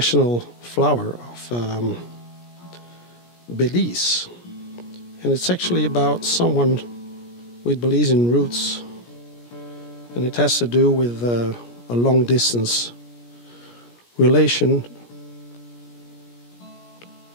flower of Belize, and it's actually about someone with Belizean roots, and it has to do with a long distance relation,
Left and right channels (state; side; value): late; right; 17 ms